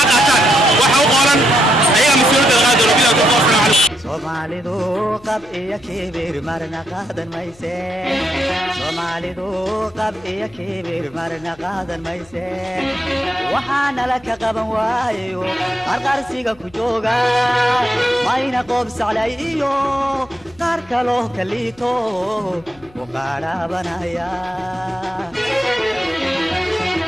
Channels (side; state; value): left; noise; hum, 26 dB below the sound